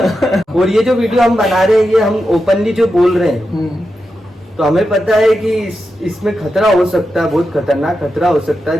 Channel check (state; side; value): normal; both; correlation 0.89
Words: और ये जो वीडियो हम बना रहे हैं ये हम ओपनली जो बोल रहे हैं, तो हमें पता है कि इसमें खतरा हो सकता है, बहुत खतरनाक खतरा हो सकता